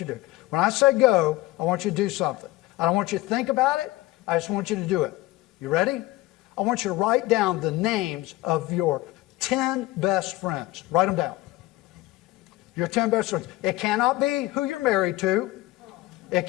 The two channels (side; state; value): right; quieter; 18.6 dB